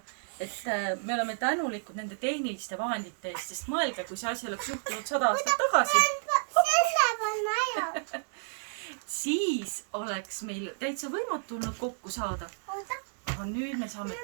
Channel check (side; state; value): left; silent; digital silence